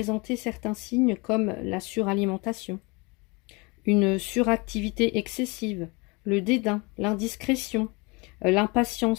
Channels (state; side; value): quieter; right; 27.8 dB